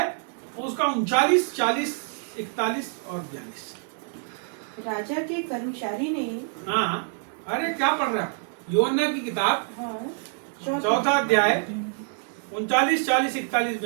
उसका 39, 40, 41 और 42। राजा के कर्मचारी ने, हाँ, अरे क्या पढ़ रहा है? योना की किताब, हाँ, 4 अध्याय 39, 40, 41,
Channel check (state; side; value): silent; left; 60 dB below the other